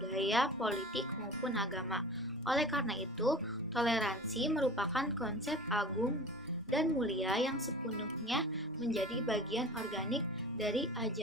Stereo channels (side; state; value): both; normal; correlation 0.37